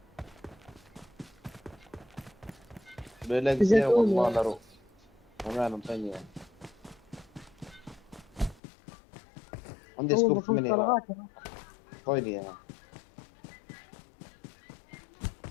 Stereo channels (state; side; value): drops out; right; at 8.6 s